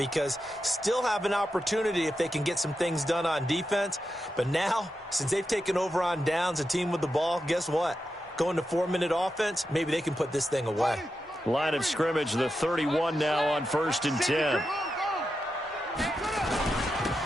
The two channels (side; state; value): both; normal; correlation 0.88